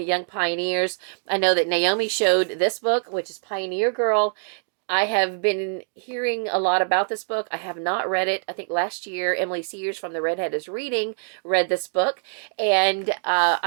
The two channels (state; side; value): silent; left; 63 dB below the other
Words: Young Pioneers. I know that Naomi showed this book, which is Pioneer Girl. I have been hearing a lot about this book. I have not read it. I think last year Emily Sears from The Redhead is Reading read this book, and